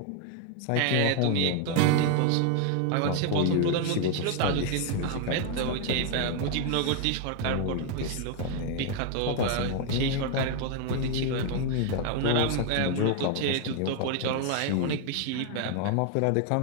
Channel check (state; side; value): different; both; correlation 0.01